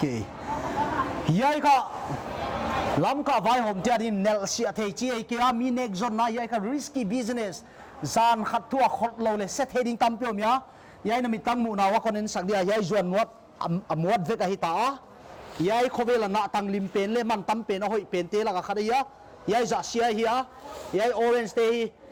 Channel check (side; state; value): both; identical; correlation 1.00